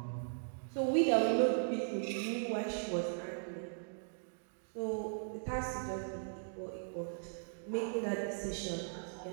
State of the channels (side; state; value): left; silent; digital silence